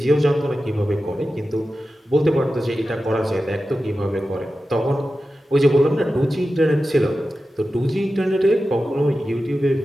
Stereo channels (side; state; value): both; normal; correlation 0.93